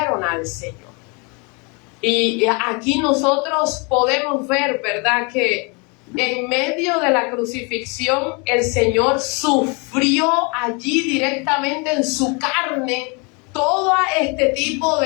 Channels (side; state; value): right; quieter; 31.6 dB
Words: al Señor. Y aquí nosotros podemos ver, ¿verdad?, que en medio de la crucifixión el Señor sufrió allí directamente en su carne todo este tipo